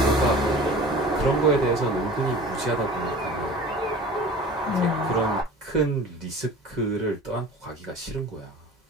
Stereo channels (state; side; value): normal; both; correlation 0.41